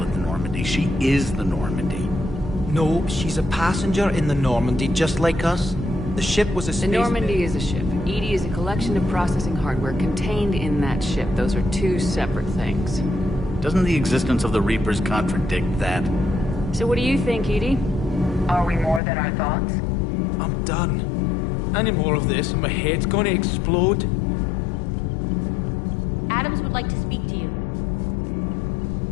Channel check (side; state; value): right; drops out; at 19.0 s